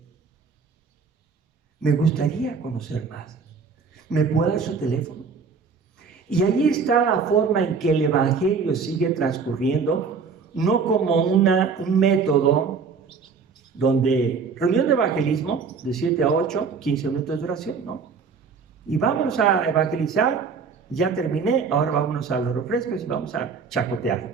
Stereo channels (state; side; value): quieter; left; 5.4 dB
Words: Me gustaría conocer más. ¿Me puede dar su teléfono? Y ahí está la forma en que el Evangelio sigue transcurriendo, no como un método donde reunión de evangelismo de 7 a 8, 15 minutos de oración, ¿no? Y vámonos a evangelizar, ya terminé, ahora vámonos a los refrescos y vamos a